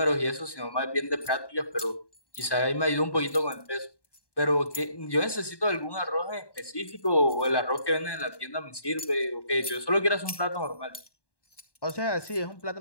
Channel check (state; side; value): late; right; 1.1 ms